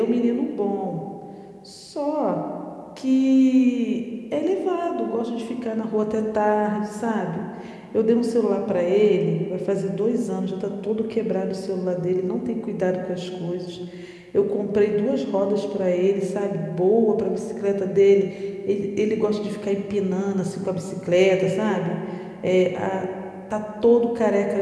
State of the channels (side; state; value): both; identical; correlation 1.00